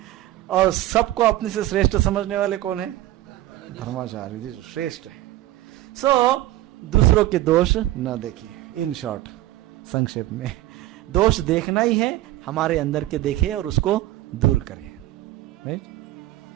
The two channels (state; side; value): quieter; left; 15.6 dB